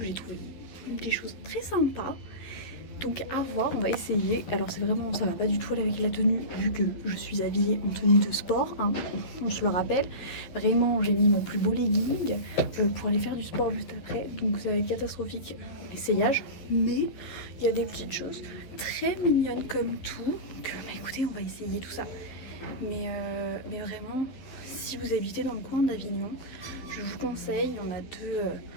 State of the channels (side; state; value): right; late; 11 ms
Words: j'ai trouvé des choses très sympas. Donc à voir, on va essayer. Alors c'est vraiment, ça va pas du tout aller avec la tenue vu que je suis habillée en tenue de sport, hein, on se le rappelle. Vraiment j'ai mis mon plus beau legging pour aller faire du sport juste après. Donc ça va être catastrophique l'essayage. Mais il y a des petites choses très mignonnes comme tout. Donc écoutez, on va essayer tout ça. Mais vraiment, si vous habitez dans le coin d'Avignon, je vous conseille, il y en a deux